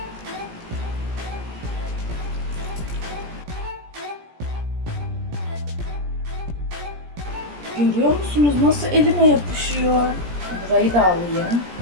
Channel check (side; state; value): left; late; 17 ms